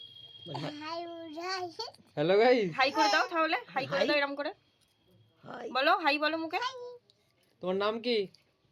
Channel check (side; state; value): both; identical; correlation 1.00